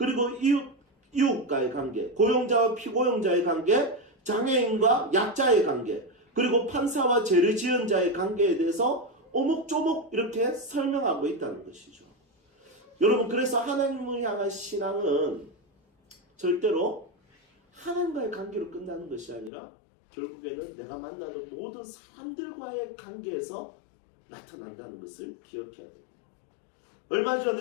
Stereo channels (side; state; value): right; drops out; at 19.5 s